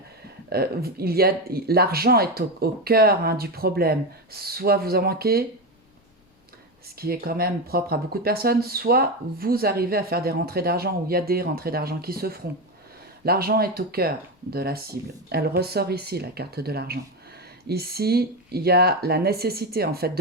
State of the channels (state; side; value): normal; both; correlation 0.14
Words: L'argent est au cœur hein, du problème. Soit vous en manquez, ce qui est quand même propre à beaucoup de personnes, soit vous arrivez à faire des rentrées d'argent ou il y a des rentrées d'argent qui se feront. L'argent est au cœur de la cible. Elle ressort ici, la carte de l'argent. Ici, il y a la nécessité en fait